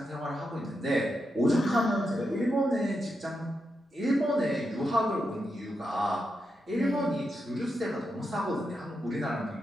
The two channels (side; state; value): both; normal; correlation 0.86